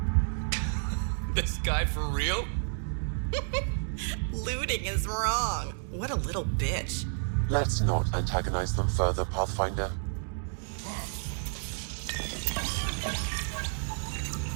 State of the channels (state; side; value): silent; left; digital silence